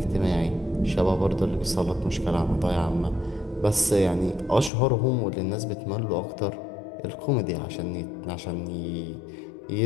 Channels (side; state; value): right; drops out; at 4.7 s